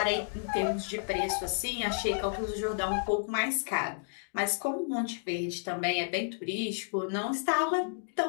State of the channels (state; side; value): silent; right; digital silence